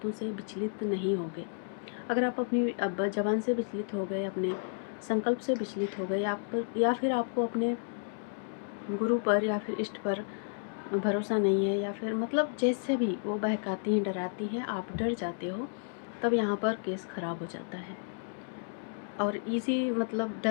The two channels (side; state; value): right; silent; digital silence